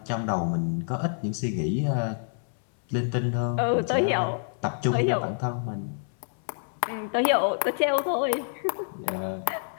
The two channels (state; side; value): silent; right; 60 dB below the other